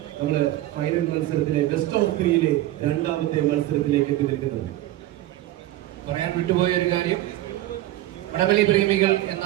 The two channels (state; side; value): quieter; left; 15.3 dB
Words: നമ്മള് ഫൈനൽ മത്സരത്തിലെ ബെസ്റ്റ് ഓഫ് 3യിലെ 2ാമത്തെ മത്സരത്തിലേക്ക് എത്തി നിൽക്കുന്നത്. പറയാൻ വിട്ടുപോയ ഒരു കാര്യം, വടംവലി പ്രേമികൾ എന്ന